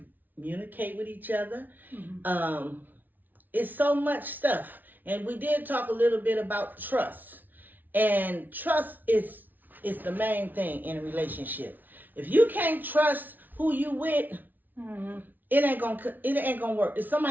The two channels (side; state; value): left; late; 0.085 ms